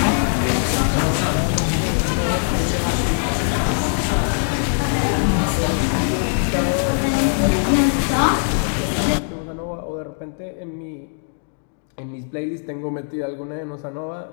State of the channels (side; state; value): right; silent; digital silence